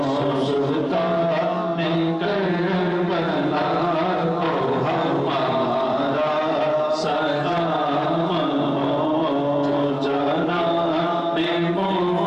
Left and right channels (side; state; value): both; identical; correlation 1.00